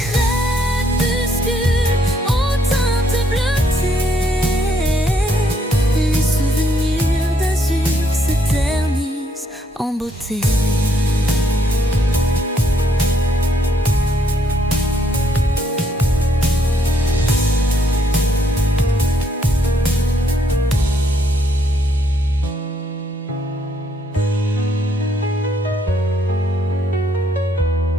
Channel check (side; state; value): both; normal; correlation 0.71